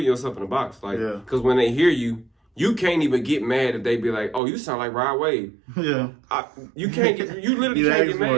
yourself in a box. Like, because when they hear you, you can't even get mad if they be like, oh, you sound like Rod Wave. Yeah. You can't get, you literally can't get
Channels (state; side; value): drops out; left; at 4.4 s